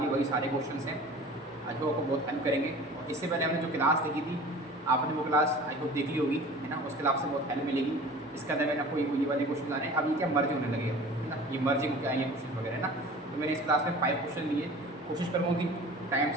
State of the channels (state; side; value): normal; both; correlation 0.42